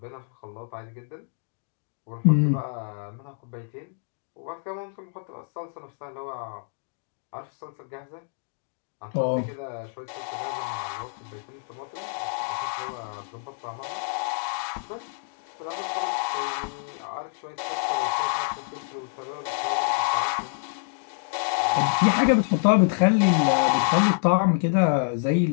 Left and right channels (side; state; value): right; silent; digital silence